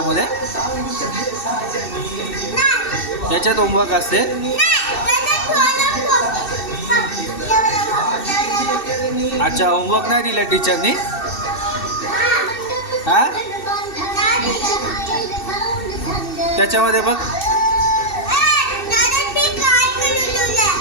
याच्यात होमवर्क असते. अच्छा, होमवर्क नाही दिला टीचरनी. हा, त्याच्यामध्ये बघ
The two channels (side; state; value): right; late; 2.7 ms